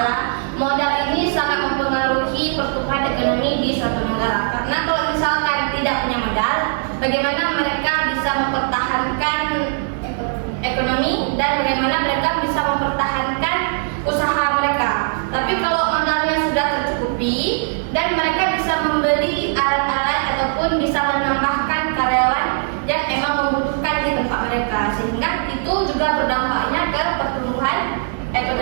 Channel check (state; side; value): silent; left; 66 dB below the other